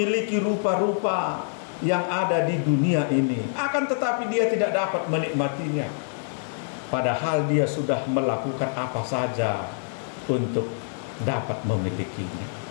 rupa-rupa yang ada di dunia ini. Akan tetapi dia tidak dapat menikmatinya. Padahal dia sudah melakukan apa saja untuk dapat memilikinya.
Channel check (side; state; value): right; silent; digital silence